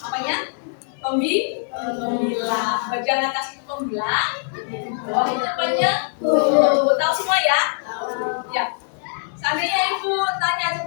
apanya? Pembilang. Bagian atas itu pembilang, bawah itu penyebut. Tahu semua ya? Ya. Seandainya ibu tanya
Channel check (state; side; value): silent; right; digital silence